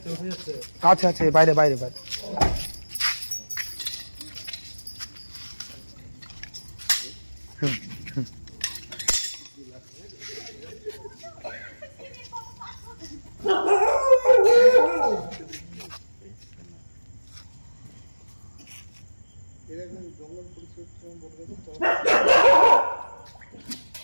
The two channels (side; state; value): both; inverted; correlation -1.00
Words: আচ্ছা আচ্ছা, বাইরে বাইরে বাইরে।